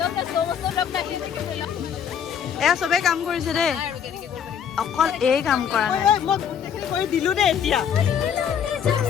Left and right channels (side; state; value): right; quieter; 8.0 dB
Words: এয়া চবে কাম কৰিছে দেই অকল এই কাম কৰা নাই মই গোটেইখিনি কৰি দিলো দেই এতিয়া